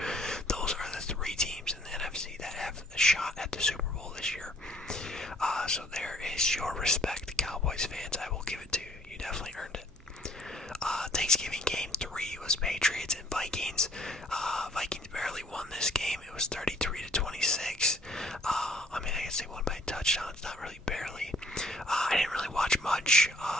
Those are the 3 teams in the NFC that have a shot at the Super Bowl this year. So there is your respect, Cowboys fans. I will give it to you. You definitely earned it. Thanksgiving game 3 was Patriots and Vikings. Vikings barely won this game. It was 33-26. I guess they won by touchdowns, not really barely. I didn't really watch much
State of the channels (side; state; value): both; normal; correlation 0.60